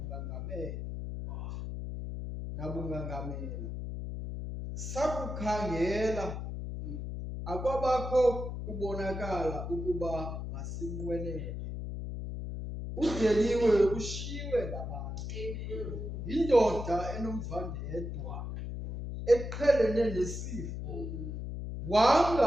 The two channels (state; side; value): noise; left; hum, 6 dB below the sound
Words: nabungangamela. Sakukhangela, akwabakho kubonakala ukuba masinqwenele. Udeliwe, ushiywe ngabantu, yindoda enomvandedwa, eqhelene nesifo,